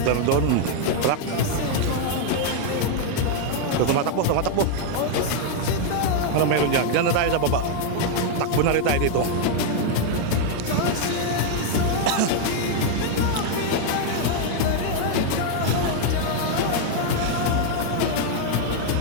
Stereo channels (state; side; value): different; both; correlation 0.00